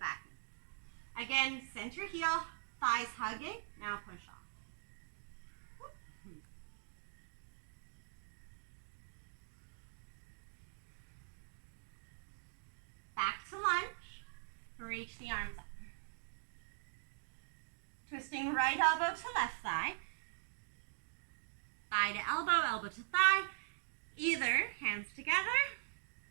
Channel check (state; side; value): silent; left; digital silence